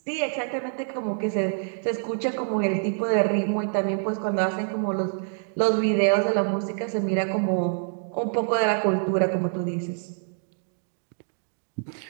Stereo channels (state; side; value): silent; left; digital silence